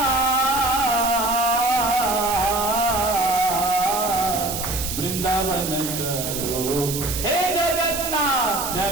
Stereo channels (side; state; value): right; noise; hiss, 5 dB below the sound